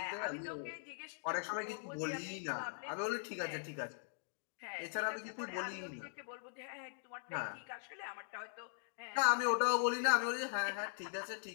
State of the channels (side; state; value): right; silent; digital silence